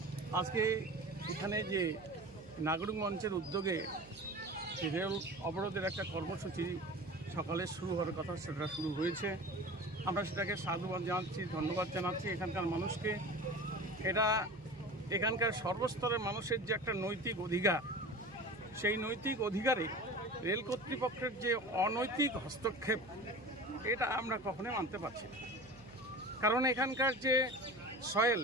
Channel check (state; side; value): noise; right; hum, 21 dB below the sound